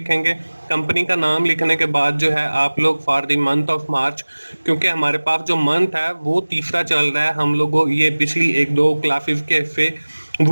कंपनी का नाम लिखने के बाद जो है आप लोग for the month of March, क्योंकि हमारे पास जो मंथ है वो तीसरा चल रहा है, हम लोगों ये पिछली 1-2 क्लासेस के से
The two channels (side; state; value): both; inverted; correlation -1.00